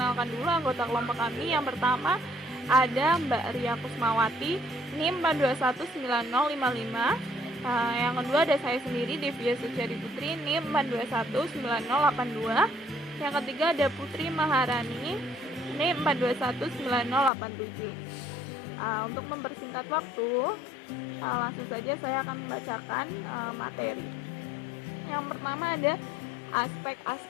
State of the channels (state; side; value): drops out; right; at 17.3 s